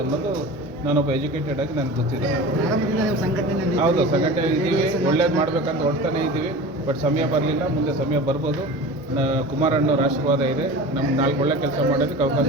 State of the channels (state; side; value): normal; both; correlation 0.35